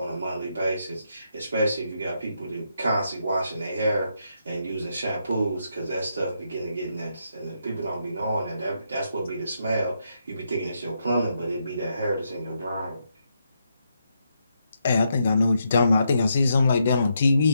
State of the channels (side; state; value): both; inverted; correlation -0.80